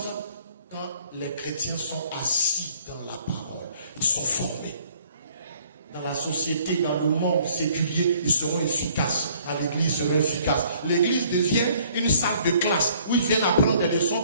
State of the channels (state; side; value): inverted; both; correlation -0.59